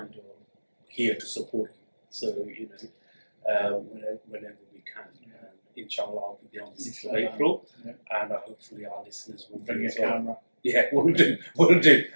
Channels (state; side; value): inverted; both; correlation -1.00